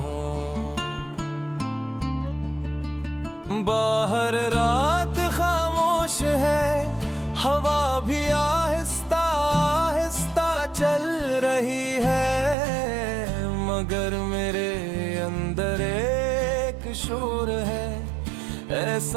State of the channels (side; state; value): left; drops out; at 12.6 s